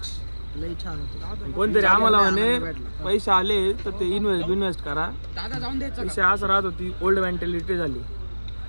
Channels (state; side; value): inverted; both; correlation -1.00